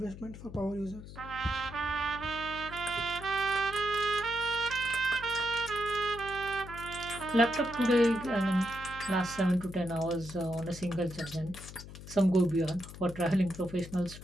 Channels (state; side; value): noise; left; hum, 14 dB below the sound